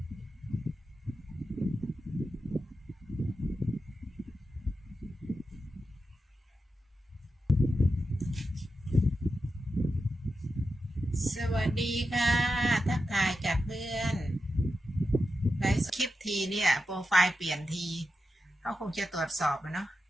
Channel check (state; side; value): normal; both; correlation 0.89